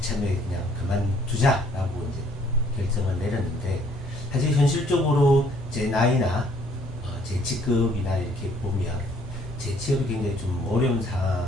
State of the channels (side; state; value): both; normal; correlation 0.62